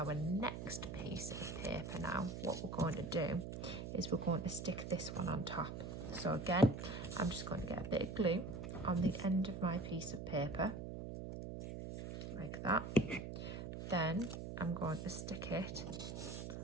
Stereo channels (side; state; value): right; noise; hum, 6 dB below the sound